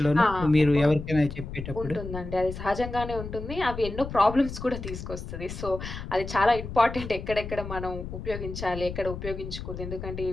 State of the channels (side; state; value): left; noise; rumble, 8 dB below the sound